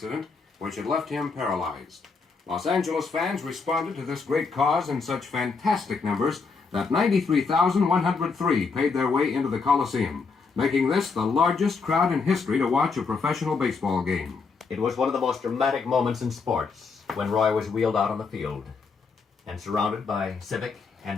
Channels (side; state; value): right; quieter; 4.8 dB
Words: which had left him paralyzed. Los Angeles fans responded to this great cause in such fantastic numbers that 93,103 paid their way into the Coliseum, making this the largest crowd in history to watch a professional baseball game. It was one of the most dramatic moments in sports when Roy was wheeled out on the field and surrounded by civic